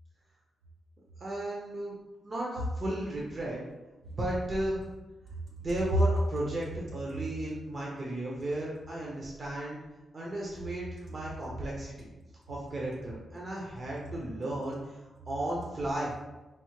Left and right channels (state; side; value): normal; both; correlation 0.83